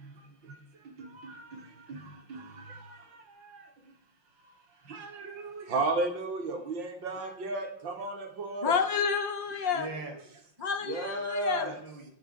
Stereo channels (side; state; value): left; late; 5.6 ms